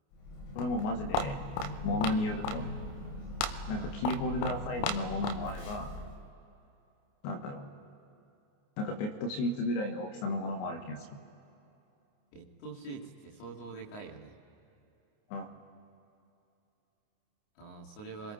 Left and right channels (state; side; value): late; right; 29 ms